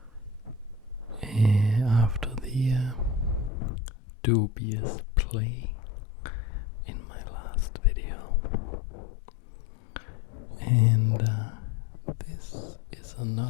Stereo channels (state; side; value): drops out; right; at 3.5 s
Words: After the dubious play in my last video. And this is